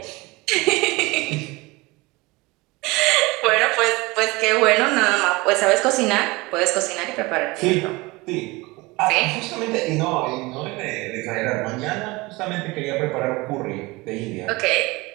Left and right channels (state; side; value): quieter; left; 23.1 dB